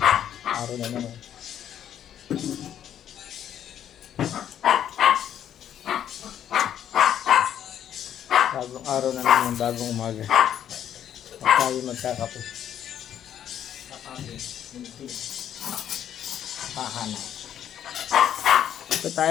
Araw na naman. Bagong araw na naman, bagong umaga. At tayo magkakape. Hahanap. Ito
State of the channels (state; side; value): quieter; right; 10.1 dB